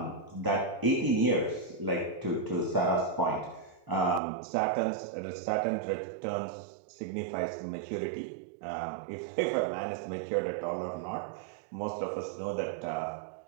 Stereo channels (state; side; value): drops out; left; at 4.2 s